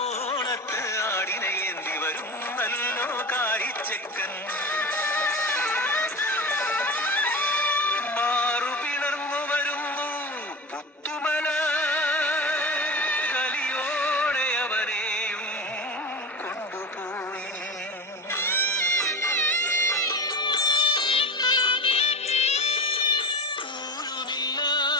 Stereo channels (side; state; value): both; normal; correlation 0.28